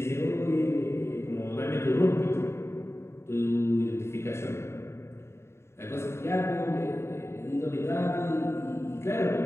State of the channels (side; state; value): right; late; 0.13 ms